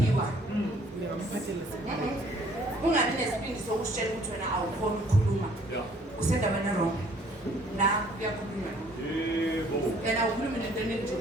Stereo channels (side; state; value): both; normal; correlation 0.59